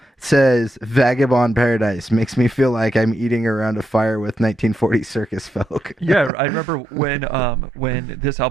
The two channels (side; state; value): left; drops out; at 6.3 s